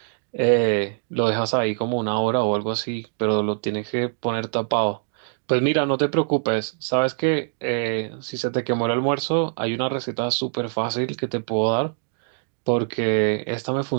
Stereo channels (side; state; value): left; silent; digital silence